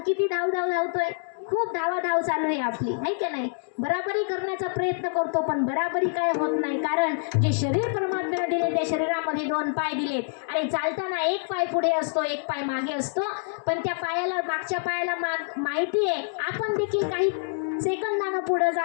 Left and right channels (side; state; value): right; silent; digital silence